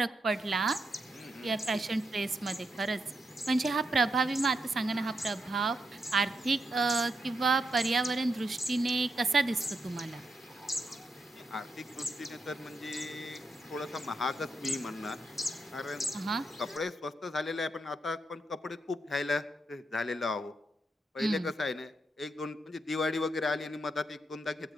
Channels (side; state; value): both; normal; correlation 0.82